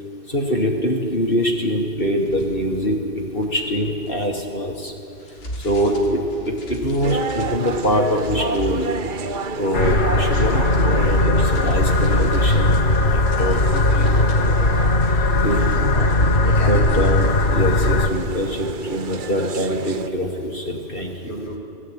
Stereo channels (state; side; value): late; right; 2.6 ms